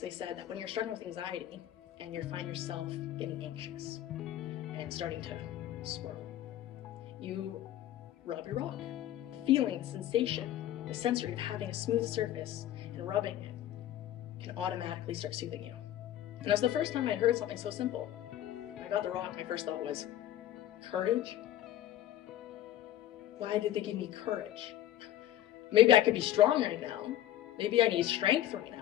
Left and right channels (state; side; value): quieter; right; 12.6 dB